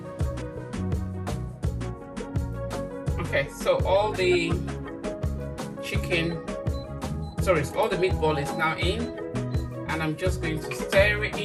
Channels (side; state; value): both; identical; correlation 1.00